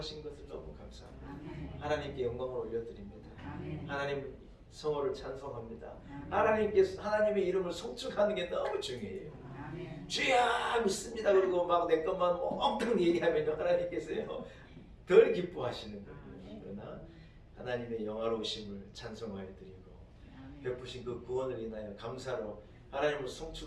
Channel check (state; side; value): identical; both; correlation 1.00